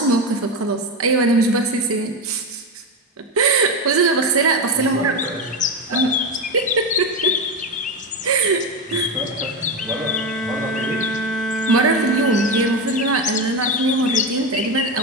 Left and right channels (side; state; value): both; normal; correlation 0.15